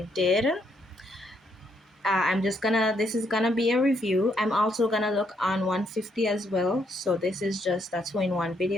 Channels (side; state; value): both; normal; correlation 0.74